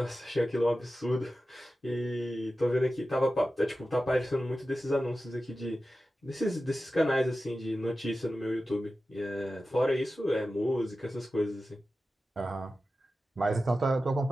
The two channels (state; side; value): normal; both; correlation 0.93